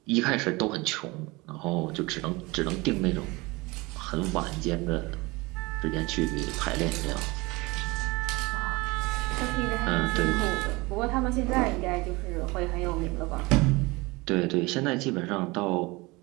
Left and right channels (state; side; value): quieter; left; 23.5 dB